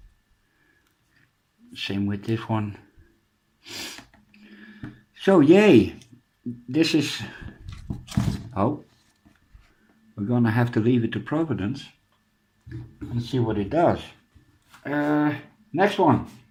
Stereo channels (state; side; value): identical; both; correlation 1.00